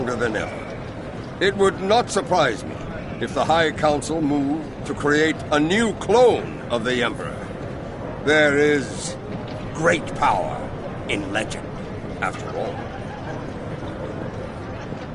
than ever. It would not surprise me if the High Council moved to create a new clone of the Emperor. There is great power in legend, after all.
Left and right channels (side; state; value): both; identical; correlation 1.00